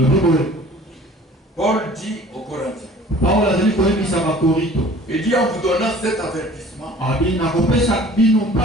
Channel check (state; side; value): normal; both; correlation 0.48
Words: Paul dit aux Corinthiens. Il dit en vous donnant cet avertissement,